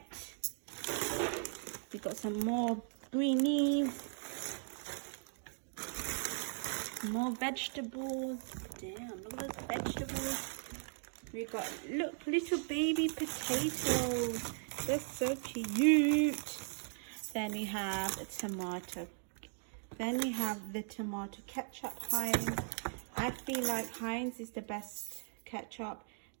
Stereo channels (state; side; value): silent; left; 52 dB below the other